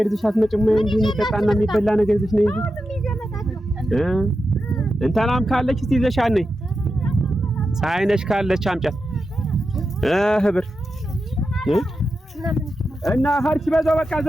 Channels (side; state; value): both; normal; correlation 0.89